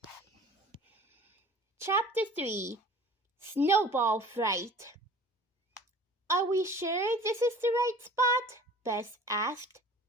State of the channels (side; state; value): both; normal; correlation 0.46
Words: Chapter 3, Snowball Fright. Are we sure this is the right spot? Bess asked.